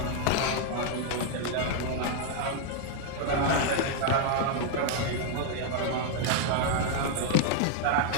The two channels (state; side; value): different; both; correlation 0.00